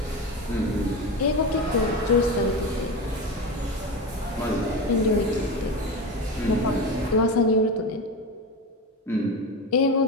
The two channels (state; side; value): normal; both; correlation 0.23